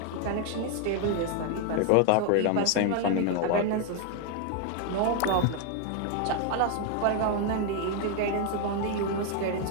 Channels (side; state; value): both; different; correlation 0.01